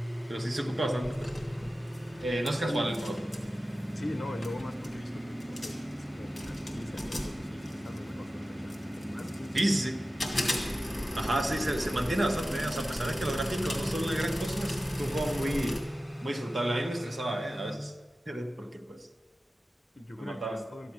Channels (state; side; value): normal; both; correlation 0.95